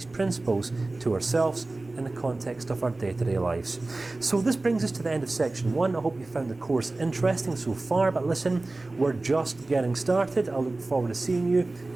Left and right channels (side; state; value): left; quieter; 3.1 dB